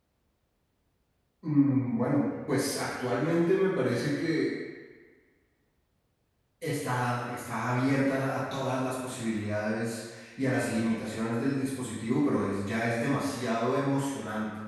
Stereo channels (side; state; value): both; identical; correlation 1.00